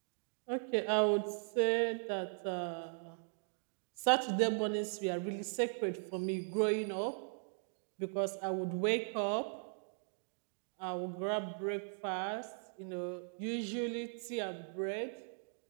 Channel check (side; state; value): left; silent; digital silence